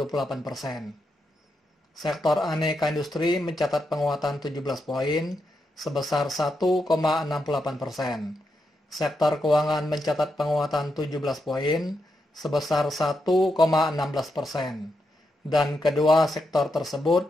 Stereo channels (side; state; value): both; normal; correlation 0.84